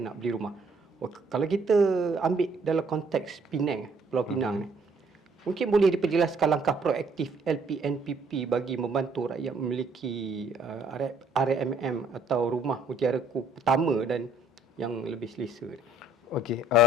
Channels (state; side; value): normal; both; correlation 0.63